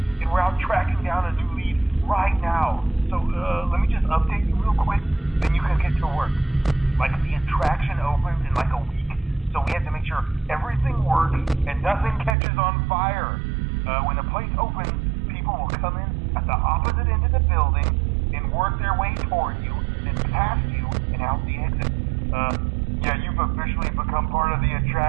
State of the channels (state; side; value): drops out; left; at 12.4 s